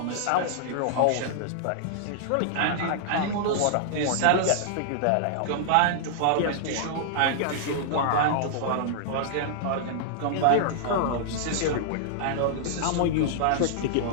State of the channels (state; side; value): different; both; correlation -0.01